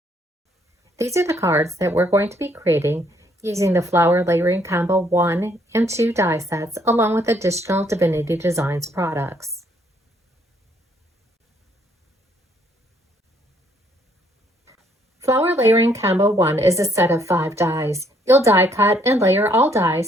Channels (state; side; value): normal; both; correlation 0.68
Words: These are the cards that we're going to be creating using the Flower Layering Combo 1 and 2 die sets along with additional Divinity Designs products. Flower Layering Combo 1 is a set of 5 dies. You'll die cut and layer all